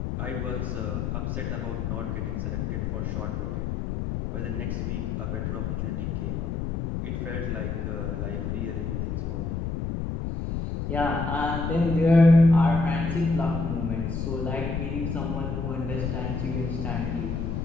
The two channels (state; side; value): noise; left; rumble, 2 dB below the sound